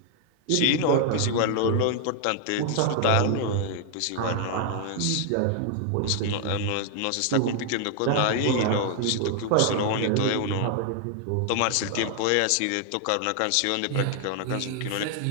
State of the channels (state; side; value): different; both; correlation 0.00